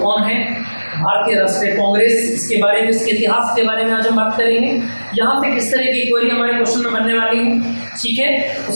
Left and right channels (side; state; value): both; inverted; correlation -1.00